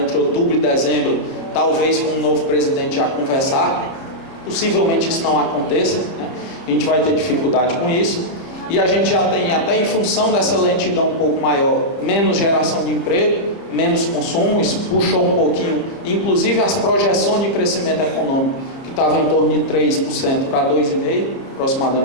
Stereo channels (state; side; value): late; right; 30 ms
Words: outubro e dezembro, talvez com um novo presidente já conversar. Possivelmente isso não aconteça, né? A gente vai ter dificuldade com isso. E a gente já tem, até em função dessa lentidão um pouco maior, menos geração de emprego, menos consumo. Isso puxou um pouquinho, inclusive as projeções de crescimento econômico, que estavam em torno de 3% para 2,5%